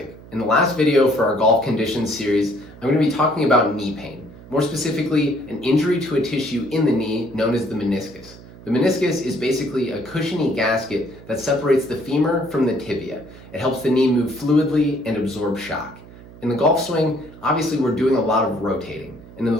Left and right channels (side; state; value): right; noise; hum, 19 dB below the sound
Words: In the last video for our golf conditions series, I'm going to be talking about knee pain. More specifically, an injury to a tissue in the knee known as the meniscus. The meniscus is basically a cushiony gasket that separates the femur from the tibia. It helps the knee move fluidly and absorb shock. In the golf swing, obviously we're doing a lot of rotating. And in